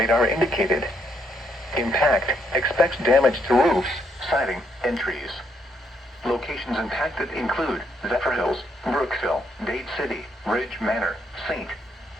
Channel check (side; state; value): both; normal; correlation 0.73